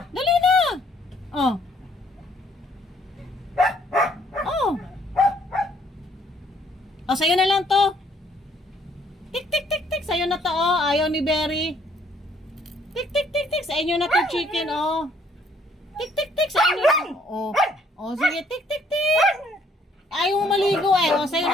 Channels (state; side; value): normal; both; correlation 0.65